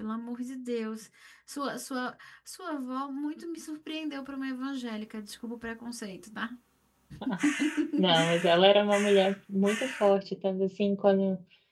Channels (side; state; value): both; identical; correlation 1.00